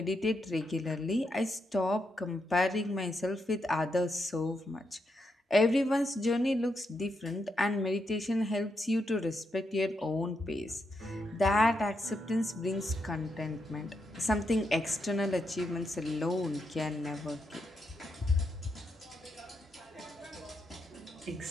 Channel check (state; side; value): normal; both; correlation 0.82